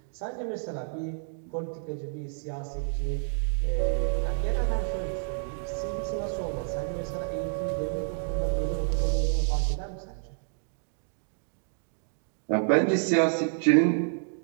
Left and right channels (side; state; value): left; silent; digital silence